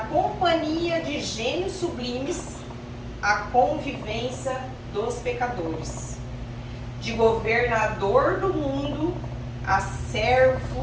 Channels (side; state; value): both; identical; correlation 1.00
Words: de gênios sublimes à convivência dos pecadores, de governador do mundo a